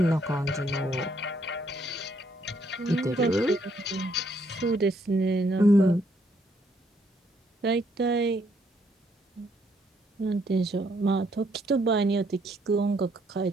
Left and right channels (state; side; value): normal; both; correlation 0.71